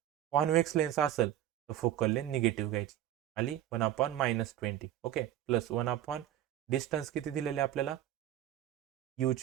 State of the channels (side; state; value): left; quieter; 12.3 dB